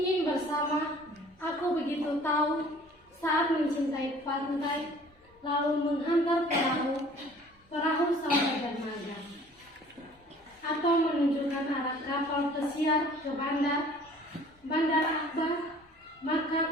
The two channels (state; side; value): normal; both; correlation 0.51